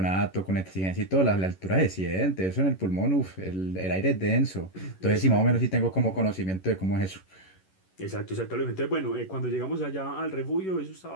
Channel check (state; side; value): late; right; 11 ms